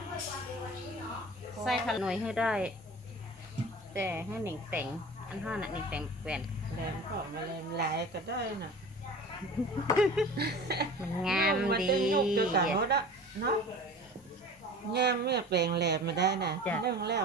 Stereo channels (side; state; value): both; normal; correlation 0.39